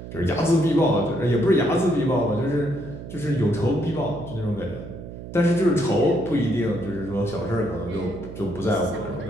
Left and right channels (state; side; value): noise; right; hum, 12 dB below the sound